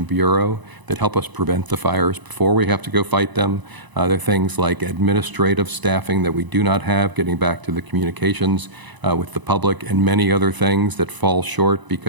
bureau that help us prevent the fires before we have to go fight them. They're things like administrative staffing that we do not have, getting back to the communications with the public, and many other things that fall short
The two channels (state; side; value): late; left; 1.0 ms